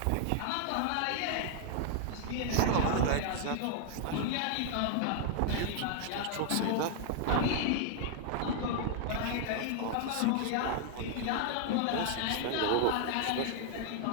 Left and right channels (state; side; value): different; both; correlation 0.00